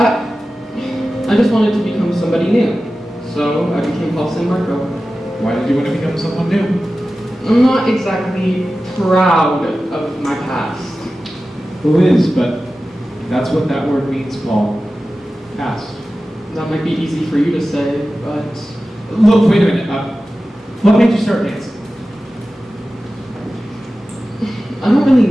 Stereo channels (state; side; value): normal; both; correlation 0.95